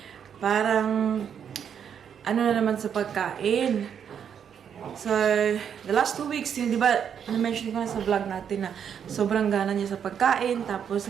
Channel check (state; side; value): quieter; left; 8.1 dB